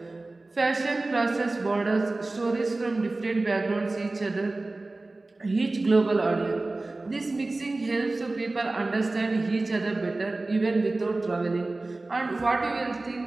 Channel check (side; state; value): left; quieter; 3.1 dB